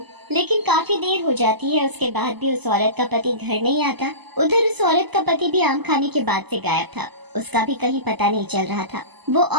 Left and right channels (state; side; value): late; left; 0.99 ms